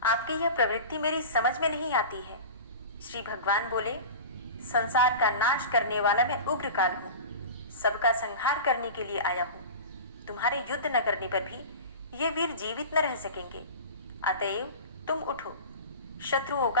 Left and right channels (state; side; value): inverted; both; correlation -0.32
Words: आपकी यह प्रवृत्ति मेरी समझ में नहीं आती है। श्री भगवान बोले, संसार का नाश करने वाला मैं उग्रकाल हूँ, सबका संहार करने के लिए आया हूँ। तुम्हारे युद्ध न करने पर भी ये वीर जीवित न रह सकेंगे, अतएव तुम उठो, शत्रुओं